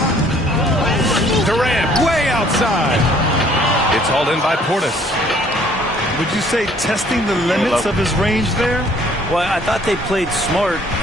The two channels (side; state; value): both; normal; correlation 0.59